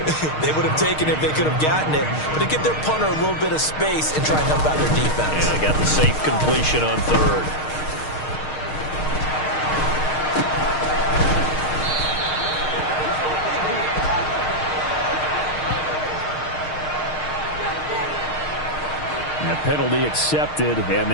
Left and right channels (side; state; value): right; late; 6.5 ms